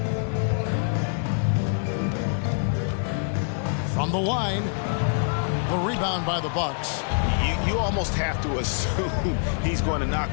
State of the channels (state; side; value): silent; right; digital silence